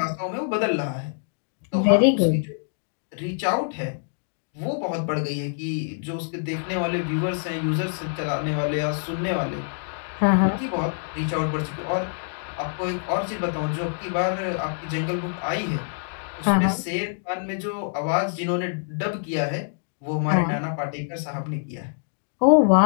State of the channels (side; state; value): right; silent; digital silence